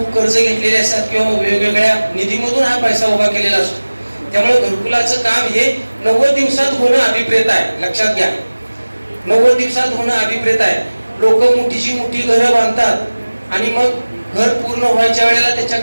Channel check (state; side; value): inverted; both; correlation -1.00